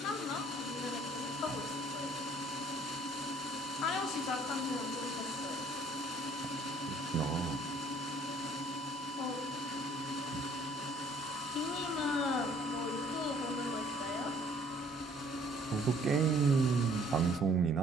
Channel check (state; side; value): normal; both; correlation 0.59